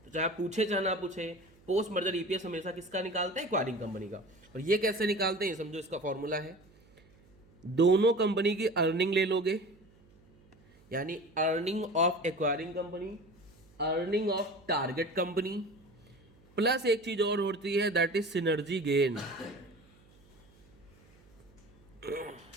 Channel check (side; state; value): right; noise; hum, 28 dB below the sound